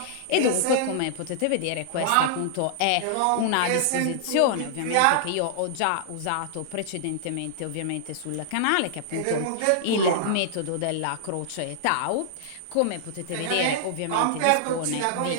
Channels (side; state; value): both; different; correlation -0.01